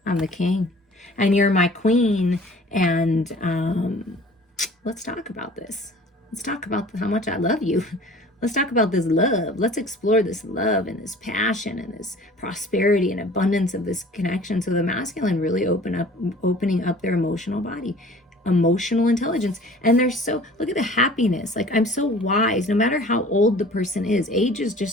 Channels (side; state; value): both; normal; correlation 0.47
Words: I'm the king. And you're my queen. And let's talk about this. Let's talk about how much I love you. Let's talk about this love. Let's explore this love and this passion and this prosperity and abundance of this connection. So the masculine really opening up their emotional body, emotional intelligence. And they're so, look at the happiness. Like, I'm so wise, no matter how old the person is. Age is